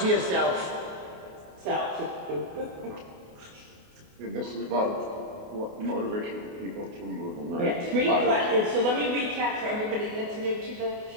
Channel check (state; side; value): late; left; 28 ms